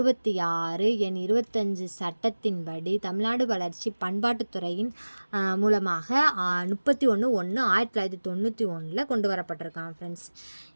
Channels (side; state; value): both; inverted; correlation -1.00